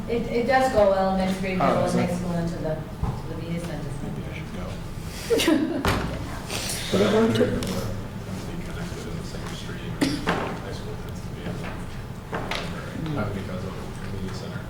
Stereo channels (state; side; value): identical; both; correlation 1.00